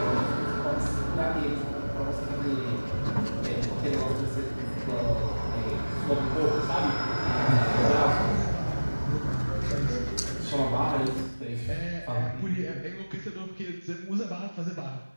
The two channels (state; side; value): inverted; both; correlation -1.00